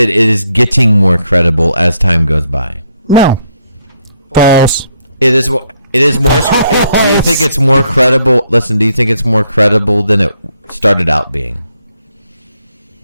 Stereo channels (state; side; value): inverted; both; correlation -0.74